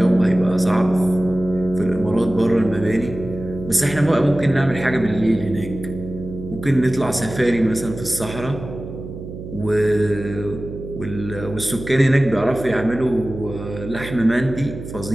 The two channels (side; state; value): right; noise; hum, 11 dB below the sound